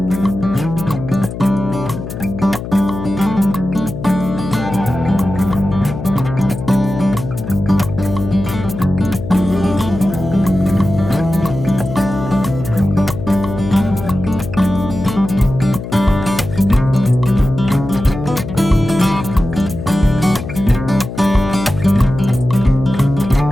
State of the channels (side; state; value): left; noise; hum, 8 dB below the sound